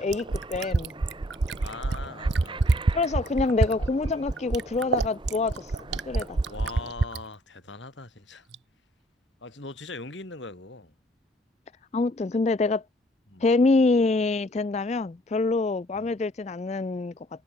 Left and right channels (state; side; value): normal; both; correlation 0.61